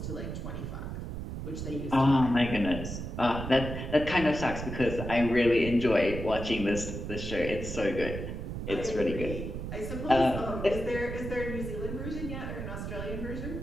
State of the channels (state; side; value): noise; right; rumble, 6 dB below the sound